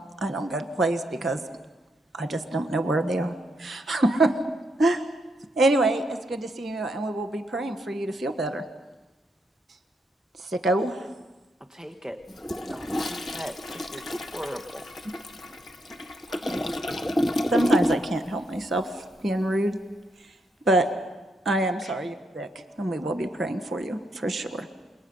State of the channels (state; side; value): normal; both; correlation 0.79